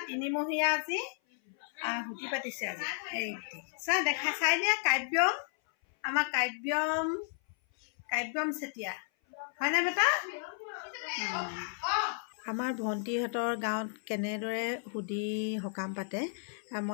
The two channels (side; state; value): right; silent; 56 dB below the other